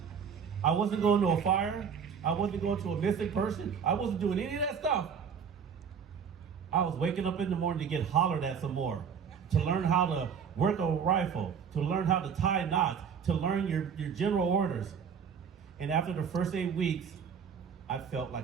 I wasn't going to a fire. I wasn't going to a missing person. I wasn't doing any of that stuff. I was waking up in the morning to get hollered at some more, to learn how to work a rifle, to learn how to tie knots, to learn your general orders. And after the first 8 weeks, I felt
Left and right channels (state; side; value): quieter; left; 6.9 dB